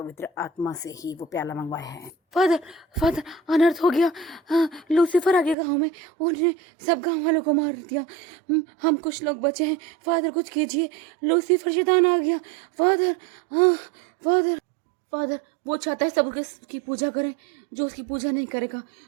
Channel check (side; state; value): left; drops out; at 5.6 s